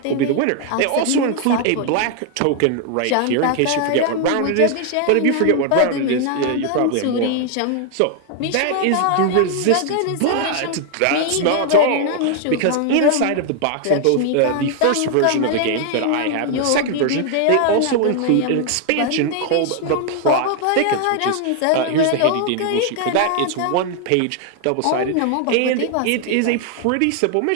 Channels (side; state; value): both; different; correlation 0.00